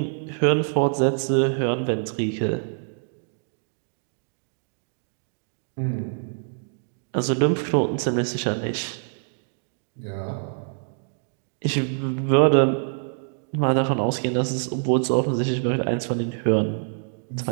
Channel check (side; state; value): left; silent; digital silence